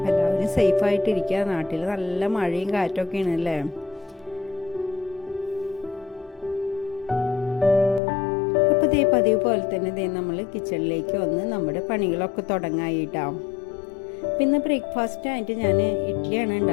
എല്ലാവരും സേഫായിട്ടിരിക്കുക. നാട്ടിൽ നല്ല മഴയും കാറ്റൊക്കെയാണ് അല്ലേ. അപ്പോൾ ദേ പതിവ് പോലെ തന്നെ ദേ നമ്മൾ കിച്ചണിലേക്ക് വന്ന് നമ്മുടെ പണികളൊക്കെ തുടങ്ങായിട്ടാവും. പിന്നെ ബ്രേക്ക്ഫാസ്റ്റ് ആയിട്ട് ഞാൻ ഇഡ്ഡലിയാണ്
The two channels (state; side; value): drops out; right; at 8.0 s